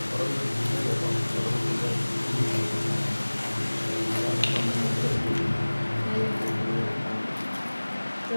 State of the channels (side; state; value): both; inverted; correlation -1.00